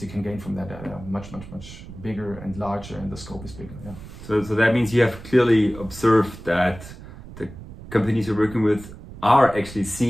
you can gain from that are much bigger and larger, and the scope is bigger. Yeah. So that means you have clearly observed that the companies you're working with are actually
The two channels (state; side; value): noise; right; rumble, 15 dB below the sound